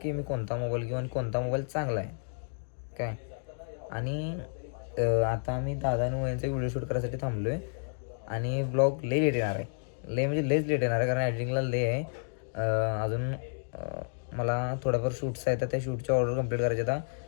की मी कोणता मोबाईल घेऊ आणि कोणता मोबाईल चांगला आहे काय. आणि आता आम्ही दादा आणि वहिनीचा व्हिडिओ शूट करायसाठी थांबलो आहे. आणि ब्लॉग लई लेट येणार आहे. म्हणजे लेच लेट येणार आहे कारण एडिटिंगला आहे. अजून मला थोड्याफार शूट्स आहेत. त्या शूटची ऑर्डर कंप्लीट करायची. आता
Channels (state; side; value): silent; right; digital silence